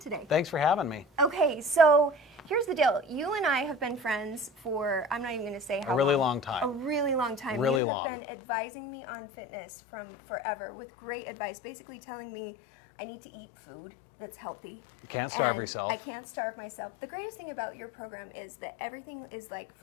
Thanks for having me. Okay, so here's the deal. You and I have been friends for, I'm not even going to say how A really long time. A really long time. Really you long. have been advising me on fitness from forever with great advice, basically telling me I need to eat food that's healthy. You can't starve And yourself. I can't starve myself. The greatest thing about your program is that everything is like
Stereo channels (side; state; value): right; drops out; at 7.8 s